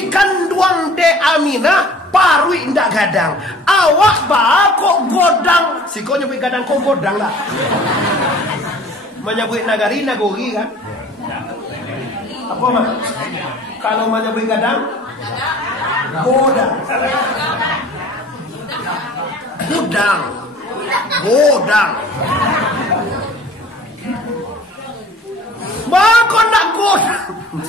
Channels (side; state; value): both; normal; correlation 0.47